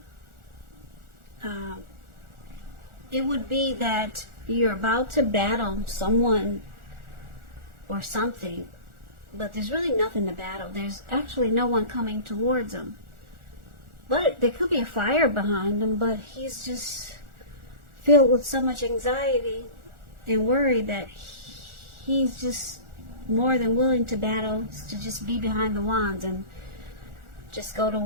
it would be that you're about to battle someone or something, but there's really nothing to battle. There's actually no one coming towards him. But there could be a fire behind him, but he's just filled with so much anxiety and worry that he's just more than willing to battle, to just be behind the wands and just go to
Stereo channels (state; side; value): late; left; 1.4 ms